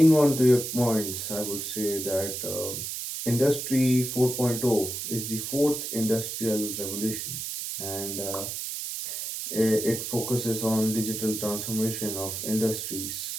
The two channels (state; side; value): noise; right; hiss, 5 dB below the sound